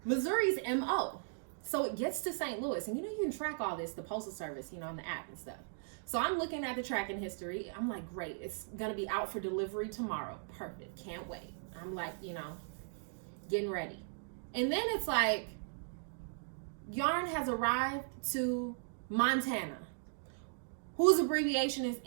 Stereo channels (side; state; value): left; silent; digital silence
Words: Missouri's MO. So it gets to St. Louis. And you can track all this, the Postal Service, on the app and stuff. So I'm looking at the tracking history. I'm like, great. It's going to be out for delivery tomorrow. Perfect. Can't wait. I'm like, getting ready. And then it's like, yarn has arrived to Montana, whose abbreviation is